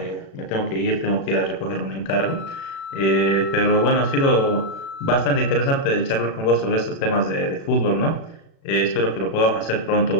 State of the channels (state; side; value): late; right; 36 ms